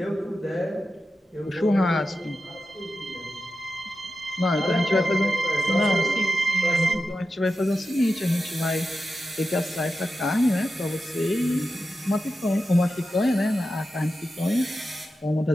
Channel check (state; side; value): normal; both; correlation 0.91